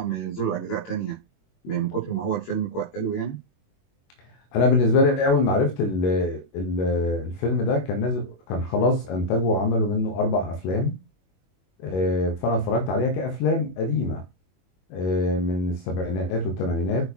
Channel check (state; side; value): late; right; 21 ms